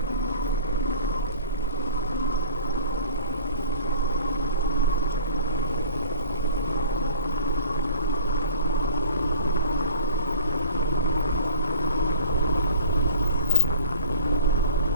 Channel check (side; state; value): both; inverted; correlation -0.48